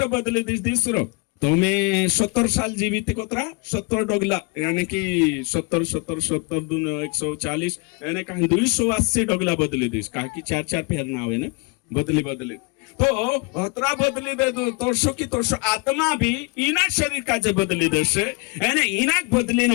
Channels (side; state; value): right; quieter; 30.5 dB